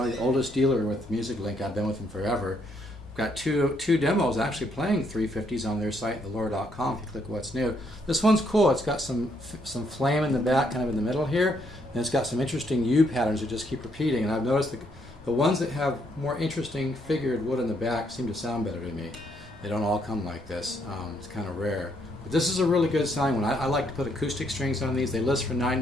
the oldest dealer with Music Link. I've been with them forever. Got two demos actually playing 350s on their site, velour.com, if you click what's new. This one's cool. It's got some flame in the back, kind of in the middle here, and it's got some interesting U patterns that just keep repeating. And I've noticed the ones that have more interesting figured wood in the back seem to sound better to me. They don't all come like this. It's kind of rare. But this is a really good sounding one. I like to put acoustic strings on these. They list for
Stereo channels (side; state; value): both; normal; correlation 0.72